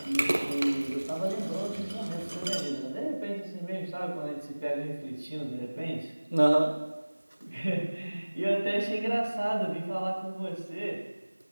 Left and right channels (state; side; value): inverted; both; correlation -1.00